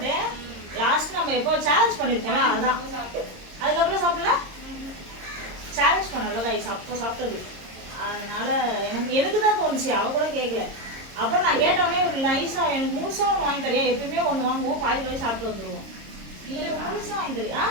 லாஸ்ட் நம்ம எப்போ சேலஞ்ச் பண்ணியிருப்போம்ல அதான். அதுக்கப்புறம் சாப்பிடல சேலஞ்ச் பண்ணல காய்ஸ் அப்போ சாப்பிட்டது. அதனால எனக்கு தான் தோணுச்சு, அவ கூட கேட்கல. அப்புறம் நான் கேட்டோடனே ஒரு நைஸாக எனக்கு முழுசாக ஒன்று வாங்கி தரியா? எப்பயுமே ஒன்று வாங்குவோம், பாதி சாப்பிட்டு வந்துடுவோம். நீங்கள் முழுசாக வாங்கி தரியா?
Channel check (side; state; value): left; late; 26 ms